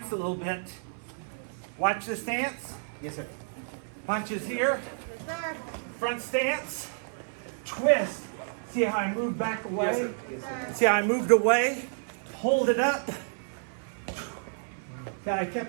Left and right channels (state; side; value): silent; left; 57 dB below the other